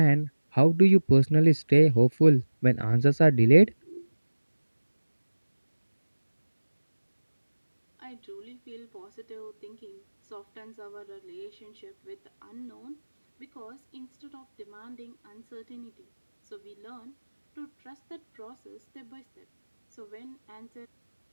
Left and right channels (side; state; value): both; inverted; correlation -1.00